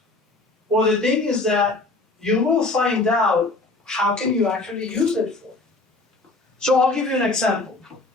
Well, the thing is that you will find out how can you actually use it for. So I'll give you an example.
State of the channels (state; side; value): quieter; right; 3.2 dB